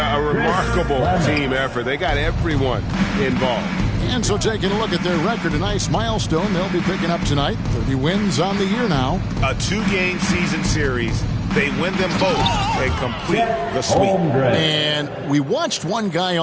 a remarkable team effort. They got everyone involved. And so taking a look at their record, a nice milestone they'll be picking up tonight. 30 wins on the year now. A 2-game season series. They win them both and complete the sweep. And we watched one guy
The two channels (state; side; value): identical; both; correlation 1.00